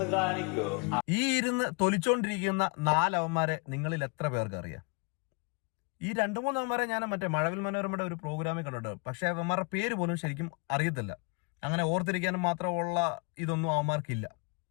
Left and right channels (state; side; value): quieter; right; 31.7 dB